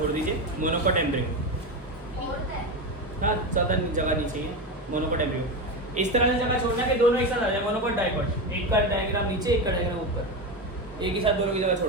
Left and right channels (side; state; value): both; normal; correlation 0.18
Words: दीजिए. Monocot embryo. हाँ, ज़्यादा जगह नहीं चाहिए. मोनोकॉट एम्ब्रियो इस तरह से जगह छोड़ना कि दोनों एक साथ आ जाए. मोनोकॉट डाइकॉट, एक का डायग्राम नीचे, एक का डायग्राम ऊपर, एक ही साथ दोनों की जगह